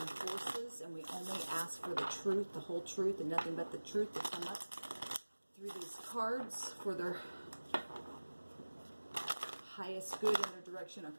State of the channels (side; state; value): both; inverted; correlation -1.00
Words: and we only ask for the truth, the whole truth, and nothing but the truth to come up through these cards for their highest good in their direction.